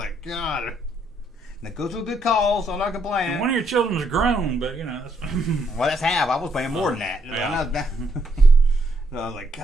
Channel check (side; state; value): both; normal; correlation 0.74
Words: God. And it goes to a good cause, so I'm not complaining. And one of your children's grown, but that's well, that's half. I was paying more than that. Yeah. So I was like,